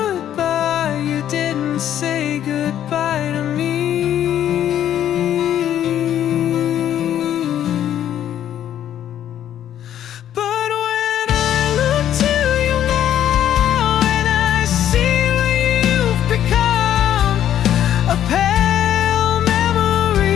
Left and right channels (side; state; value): right; quieter; 10.9 dB